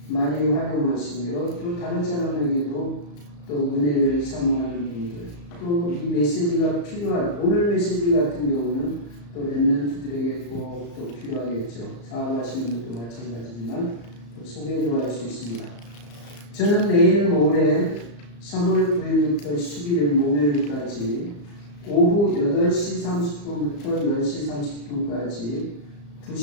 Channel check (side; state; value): right; late; 34 ms